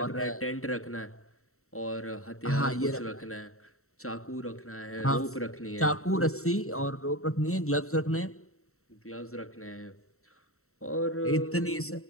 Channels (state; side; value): late; right; 0.63 ms